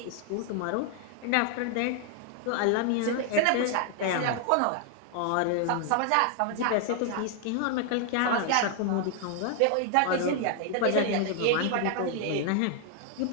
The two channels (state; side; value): different; both; correlation 0.00